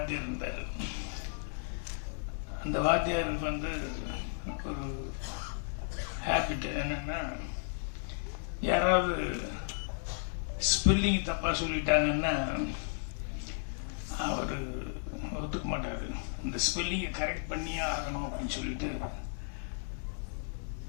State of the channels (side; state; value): right; silent; digital silence